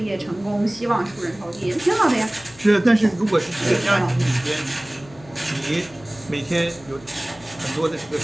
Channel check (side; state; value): left; noise; hum, 23 dB below the sound